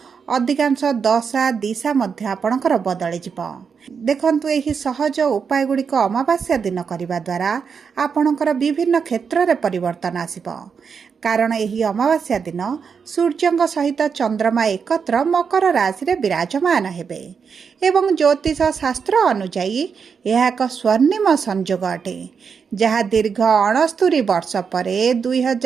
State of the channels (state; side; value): quieter; left; 6.1 dB